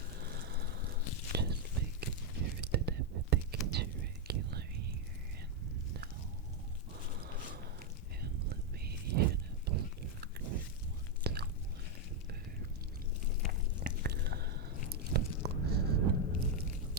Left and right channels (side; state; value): both; normal; correlation 0.02